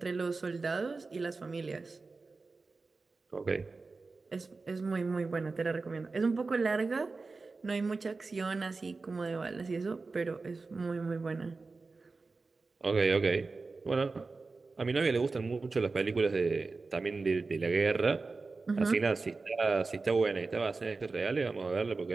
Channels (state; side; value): quieter; left; 3.9 dB